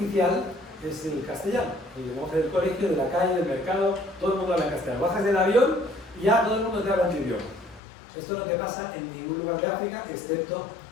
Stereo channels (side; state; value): right; drops out; at 7.8 s